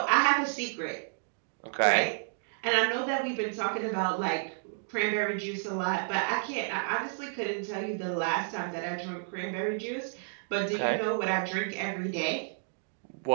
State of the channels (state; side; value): silent; left; digital silence